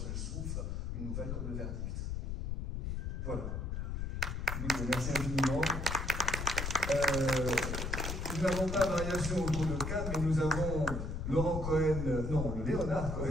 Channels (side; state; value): left; noise; rumble, 3 dB below the sound